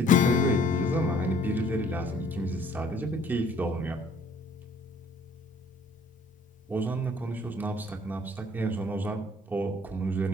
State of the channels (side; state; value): both; normal; correlation 0.57